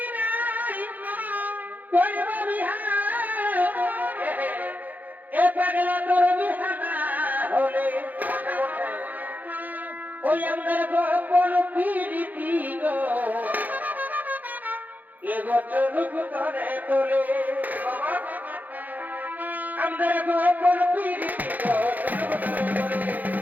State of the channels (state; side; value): late; left; 0.082 ms